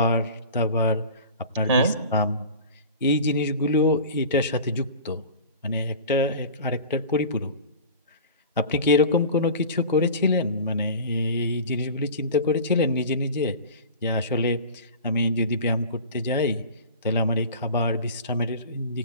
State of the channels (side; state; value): both; inverted; correlation -0.38